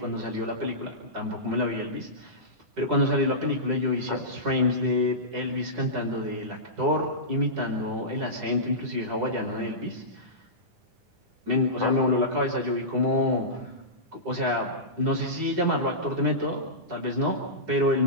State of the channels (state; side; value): late; left; 10 ms